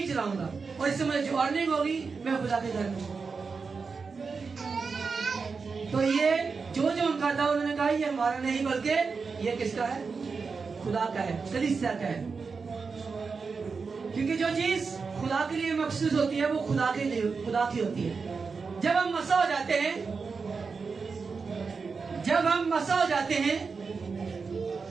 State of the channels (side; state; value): left; quieter; 4.9 dB